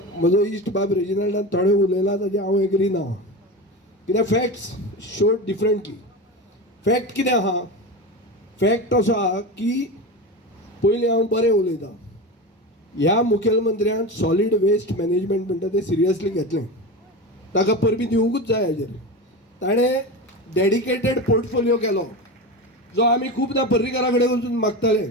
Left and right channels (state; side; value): normal; both; correlation 0.24